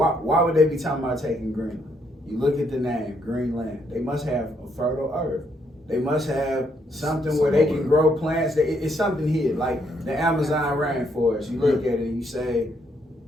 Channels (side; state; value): both; normal; correlation 0.73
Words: would they be talking about taking Greenland? You look at the name, Greenland. They must have a fertile earth. They must have something where they can grow plants. It's something here, like the Amazon rainforest. You look at it and you say,